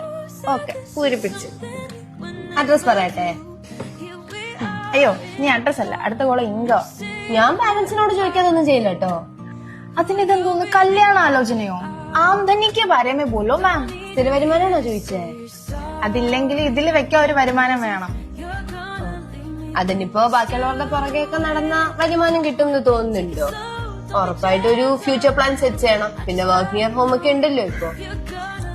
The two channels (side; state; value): both; identical; correlation 1.00